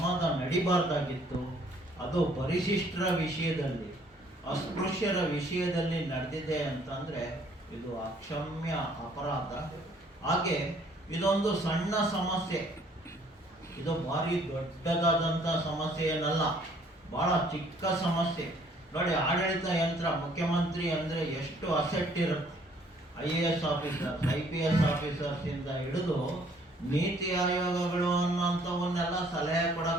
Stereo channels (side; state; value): both; normal; correlation 0.61